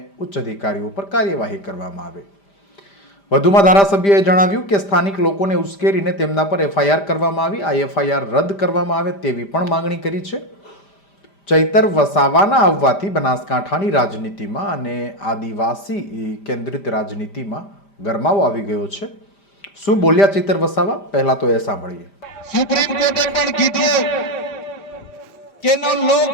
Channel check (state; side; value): late; right; 5.0 ms